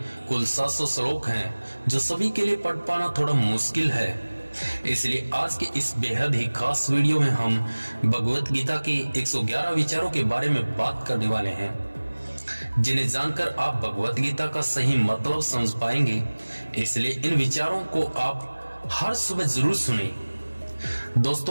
कुल 700 श्लोक हैं जो सभी के लिए पढ़ पाना थोड़ा मुश्किल है। इसलिए आज के इस बेहद ही खास वीडियो में हम भगवत गीता के 111 विचारों के बारे में बात करने वाले हैं, जिन्हें जानकर आप भगवत गीता का सही मतलब समझ पाएंगे। इसलिए इन विचारों को आप हर सुबह जरूर सुनें।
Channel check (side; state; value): both; inverted; correlation -1.00